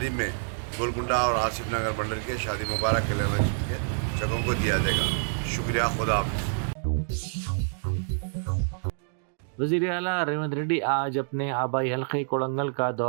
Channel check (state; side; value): silent; left; digital silence